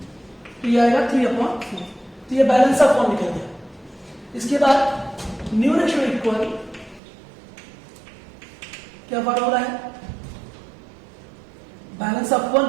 तो ये आएगा 3/4। तो ये बैलेंस ऑफ वन निकल गया। इसके बाद न्यू रेशियो इक्वल क्या फॉर्मूला है, balance of one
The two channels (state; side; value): drops out; left; at 7.0 s